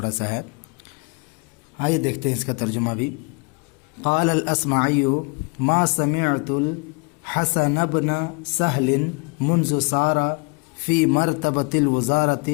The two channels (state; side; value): quieter; right; 32.8 dB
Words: سا ہے، آئیے دیکھتے ہیں اس کا ترجمہ بھی۔ قال الاصمعی ما سمعت الحسن بن سہل منذ صار فی مرتبۃ الوزارۃ